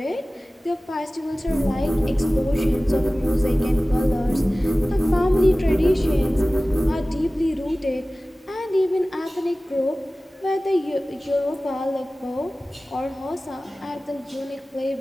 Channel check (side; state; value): both; normal; correlation 0.97